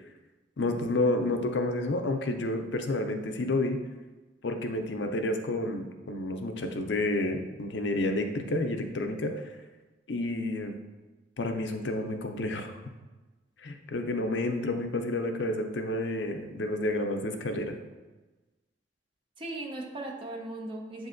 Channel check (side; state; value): both; normal; correlation 0.36